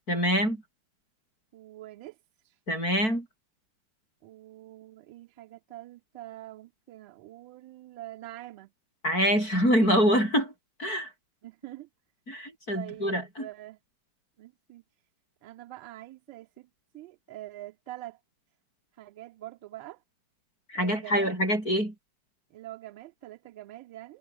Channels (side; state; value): right; late; 4.5 ms